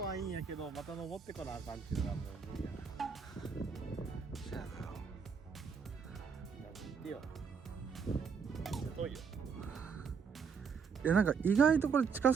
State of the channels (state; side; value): quieter; left; 6.0 dB